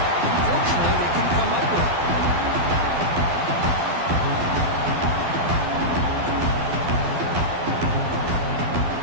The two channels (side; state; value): left; late; 12 ms